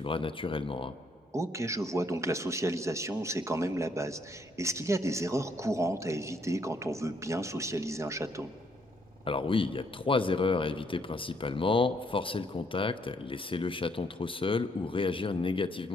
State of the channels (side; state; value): both; normal; correlation 0.70